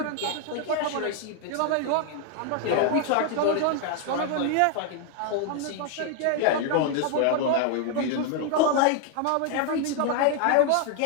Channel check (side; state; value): both; different; correlation 0.00